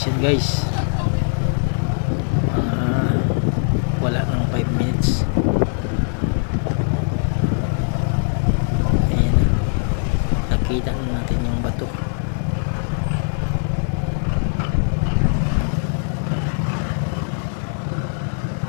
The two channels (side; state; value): right; silent; 61 dB below the other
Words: guys. Wala nang 5 minutes. Ayan, nakita na natin yung bato.